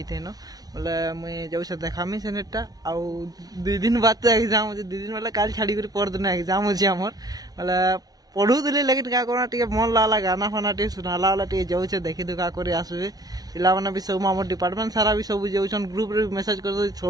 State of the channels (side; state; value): left; late; 0.19 ms